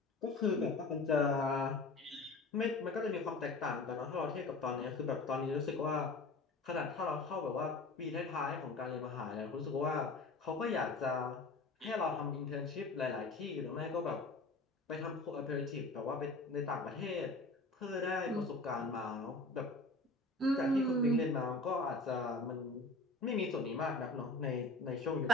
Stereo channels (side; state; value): right; quieter; 3.4 dB